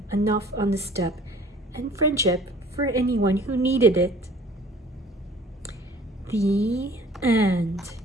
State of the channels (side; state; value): both; normal; correlation 0.51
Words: enough on the steppe, and friendship for anyone who needed it. The end.